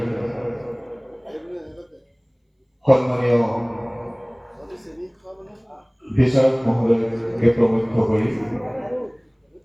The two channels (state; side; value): identical; both; correlation 1.00